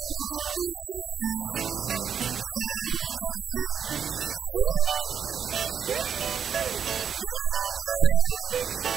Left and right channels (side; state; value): left; quieter; 7.6 dB